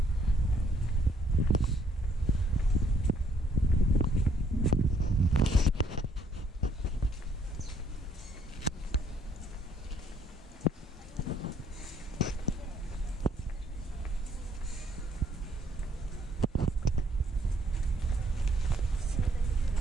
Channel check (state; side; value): normal; both; correlation 0.67